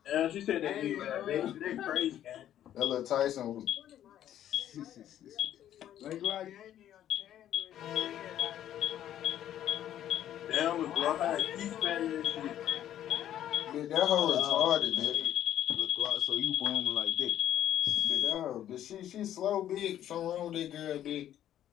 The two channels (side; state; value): right; quieter; 11.4 dB